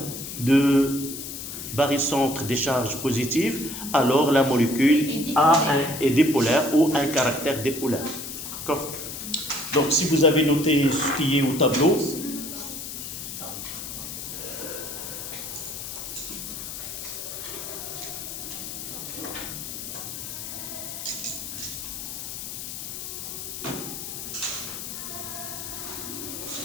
de barycentre des charges positives, alors la molécule est dipolaire ou un caractère dipolaire. D'accord? Donc, si vous avez noté ce qui est au tableau,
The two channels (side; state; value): left; noise; hiss, 8 dB below the sound